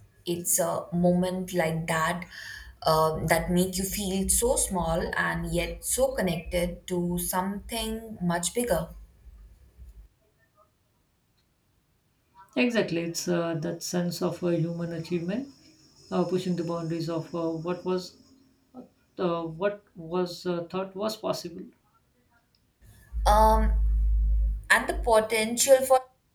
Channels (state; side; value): identical; both; correlation 1.00